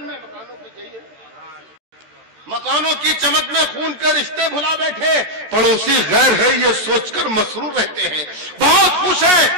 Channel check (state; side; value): late; left; 14 ms